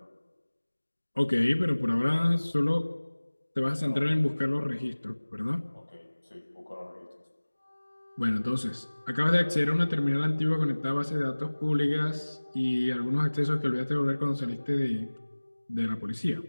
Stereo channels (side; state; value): both; inverted; correlation -1.00